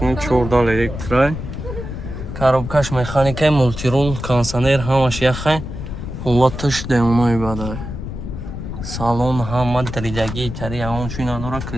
14 электрай коробкаш механикаи мултирул кондиционер ҳамаш яхай ҳолаташ демонои бадай салон ҳама даридагии тари ягон чӣ надорад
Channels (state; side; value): noise; left; rumble, 8 dB below the sound